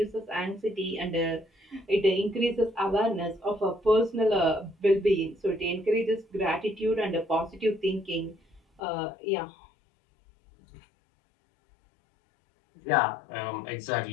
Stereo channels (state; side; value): drops out; right; at 8.8 s